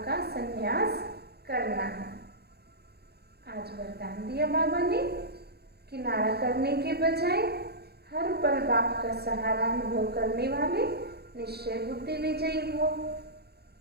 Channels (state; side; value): late; left; 0.47 ms